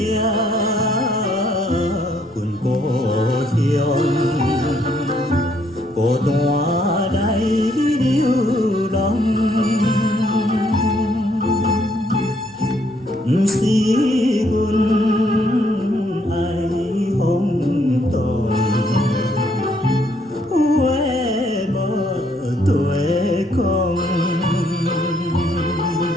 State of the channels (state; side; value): noise; left; rumble, 29 dB below the sound